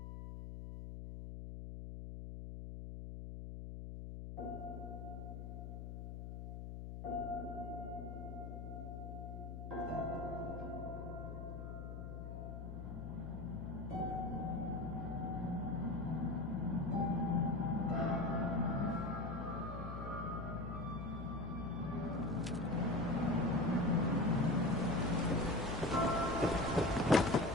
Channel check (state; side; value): noise; left; hum, 8 dB below the sound